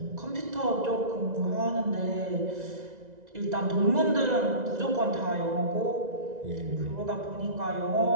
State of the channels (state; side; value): late; left; 2.0 ms